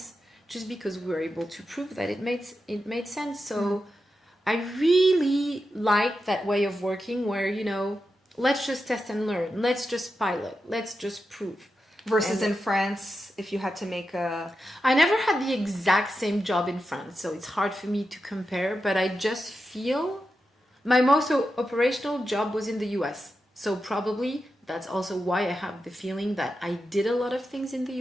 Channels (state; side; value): normal; both; correlation 0.89